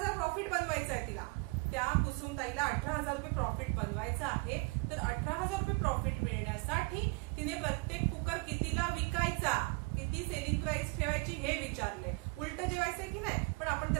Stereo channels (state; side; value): quieter; left; 28.4 dB